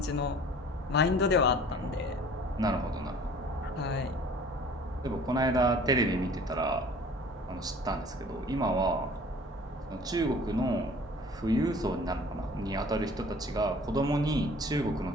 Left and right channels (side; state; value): both; normal; correlation 0.49